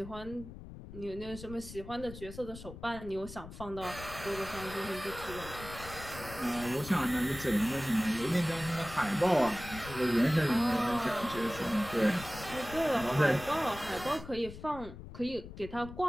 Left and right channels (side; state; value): left; noise; rumble, 13 dB below the sound